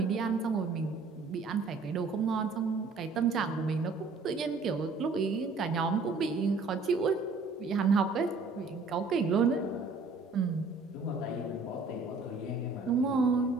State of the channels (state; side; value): quieter; left; 4.0 dB